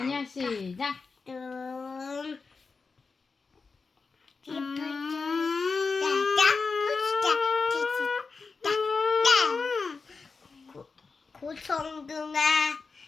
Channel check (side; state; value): right; quieter; 4.6 dB